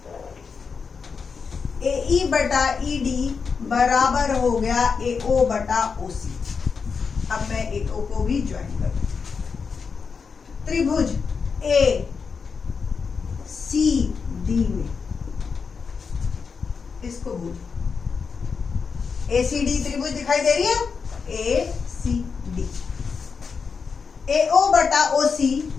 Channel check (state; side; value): quieter; right; 5.5 dB